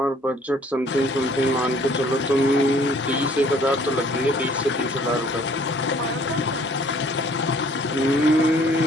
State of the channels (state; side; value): normal; both; correlation 0.58